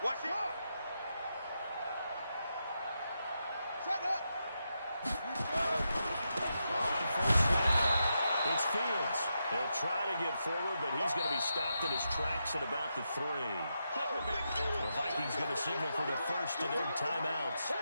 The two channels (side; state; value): both; inverted; correlation -0.85